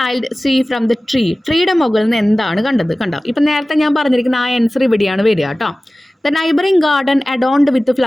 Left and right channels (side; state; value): both; normal; correlation 0.97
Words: see from the tree? ട്രീയുടെ മുകളിൽ നിന്ന് എന്താണ് കണ്ടത്? കണ്ടോ? ഇപ്പം നേരത്തെ ഞാൻ പറഞ്ഞിരിക്കുന്ന ആ ആൻസർ ഇവിടെയാണ് വരിക കേട്ടോ. The neighbouring garden adorned with